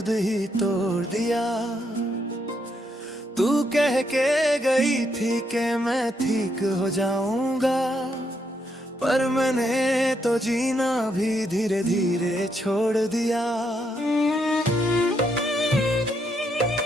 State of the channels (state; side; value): normal; both; correlation 0.77